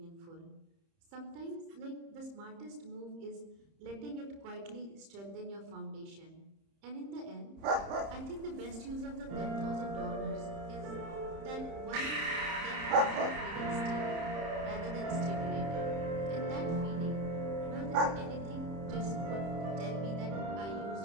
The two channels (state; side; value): late; left; 30 ms